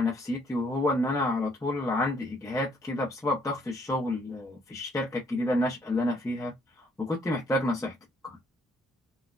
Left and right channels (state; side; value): normal; both; correlation 0.67